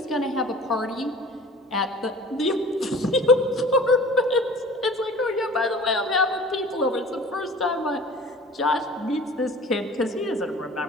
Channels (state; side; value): normal; both; correlation 0.44